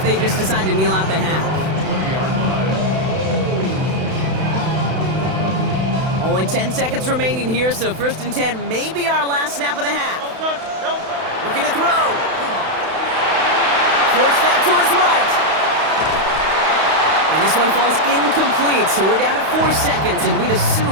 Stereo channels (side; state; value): left; late; 32 ms